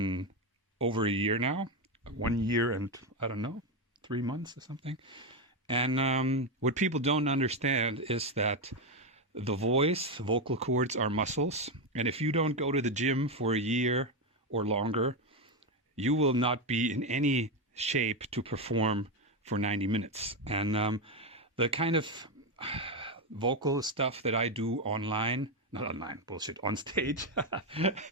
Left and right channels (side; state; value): both; normal; correlation 0.09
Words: over a year now. 1 year and, I don't know, 3 months or something. And what people don't understand is that the vocal cords are muscles. And if you don't go to the gym for a year or longer, you will not be in any shape to perform for 90 minutes. And the kind of vocal stuff that I do on stage,